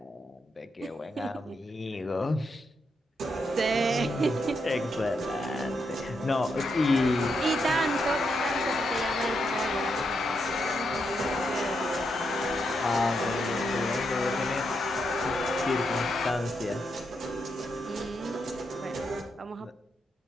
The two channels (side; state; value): both; normal; correlation 0.81